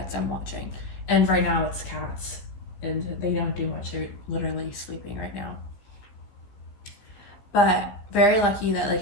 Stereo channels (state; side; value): late; right; 15 ms